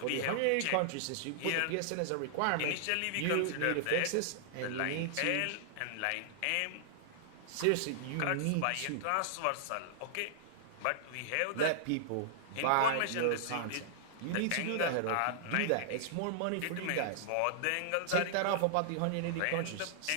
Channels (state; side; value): different; both; correlation -0.01